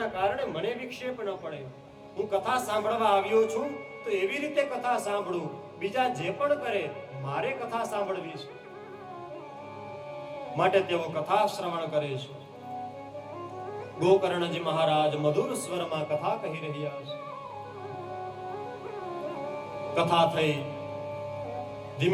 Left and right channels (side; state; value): both; identical; correlation 1.00